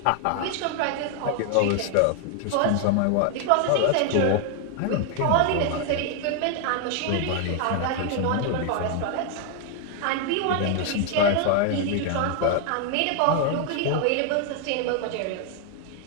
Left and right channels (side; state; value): both; different; correlation 0.00